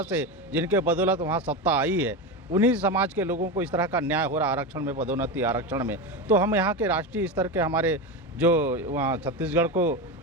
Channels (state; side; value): normal; both; correlation 0.18